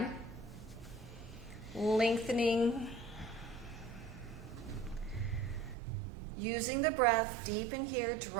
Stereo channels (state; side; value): drops out; left; at 5.8 s